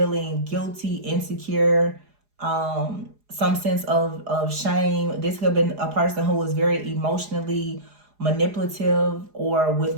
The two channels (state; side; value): late; left; 4.8 ms